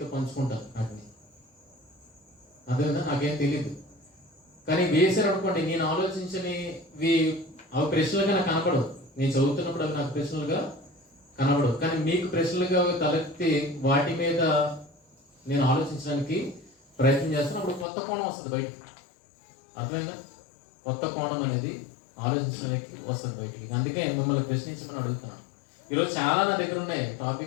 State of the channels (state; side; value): drops out; right; at 17.9 s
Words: పంచుకుంటాను వాటిని. అదేనా నాకేం తెలియదు. కానీ వేసారు అనుకోండి, నేను ఆలోచించనివి అవి ప్రశ్నలుగా నాకు కనపడవు. నేను చదువుతున్నప్పుడు అవి నాకు ప్రశ్నలుగా కనపడవు. కానీ మీకు ప్రశ్నలుగా తలెత్తి వాటి మీద నేను ఆలోచించడానికి ప్రయత్నం చేస్తాను. అప్పుడు కొత్త కోణం వస్తుంది బయటికి. అర్థమైందా? కొత్త కోణం అనేది ఆలోచించడానికి వస్తుంది బయటికి. అందుకే మిమ్మల్ని ప్రశ్నించమని అడుగుతున్నాను. ఈరోజు చాలా నా దగ్గర ఉన్నాయి